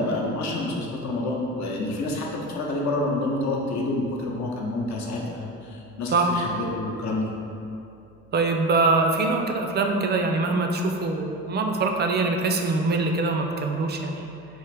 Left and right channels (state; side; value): noise; right; hum, 29 dB below the sound